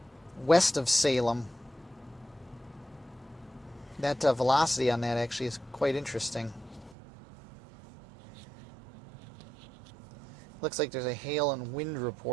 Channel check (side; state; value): left; drops out; at 7.0 s